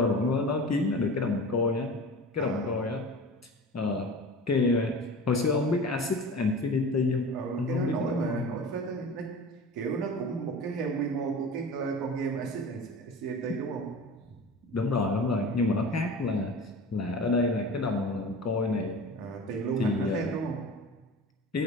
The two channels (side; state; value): both; normal; correlation 0.35